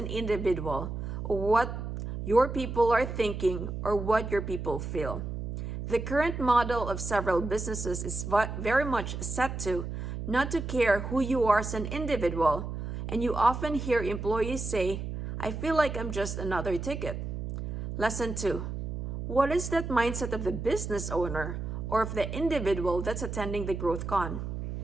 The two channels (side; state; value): right; noise; hum, 5 dB below the sound